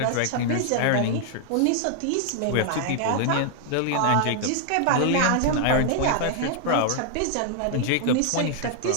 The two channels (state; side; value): different; both; correlation 0.00